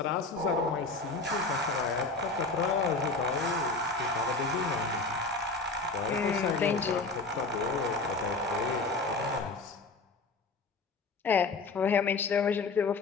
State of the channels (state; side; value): quieter; right; 3.7 dB